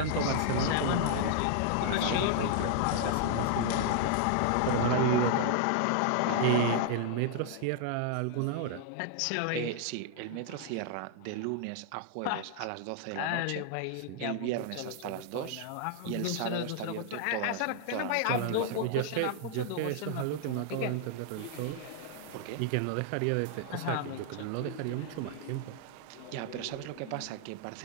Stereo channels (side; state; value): both; different; correlation -0.01